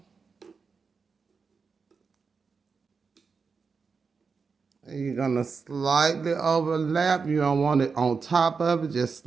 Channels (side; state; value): left; quieter; 5.2 dB